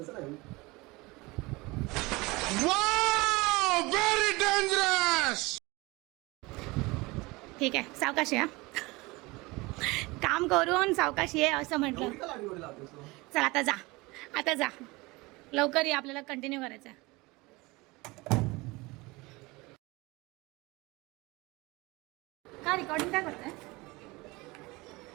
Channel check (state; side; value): quieter; left; 23.2 dB